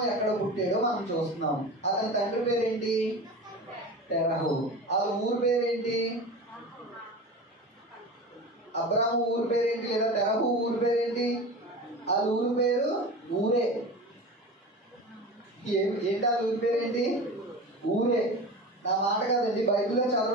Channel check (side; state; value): both; normal; correlation 0.31